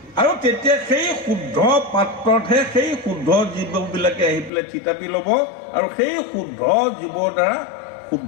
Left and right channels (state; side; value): drops out; right; at 4.5 s